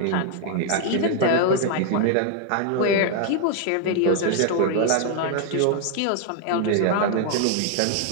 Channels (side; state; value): both; different; correlation 0.00